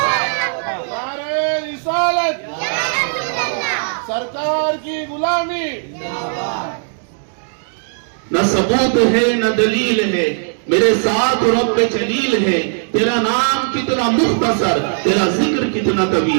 نعرہ رسالت، سرکار کی غلامی، نہ ثبوت ہے نہ دلیل ہے، میرے ساتھ رب جلیل ہے۔ تیرا نام کتنا مختصر، تیرا ذکر کتنا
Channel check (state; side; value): silent; left; 68 dB below the other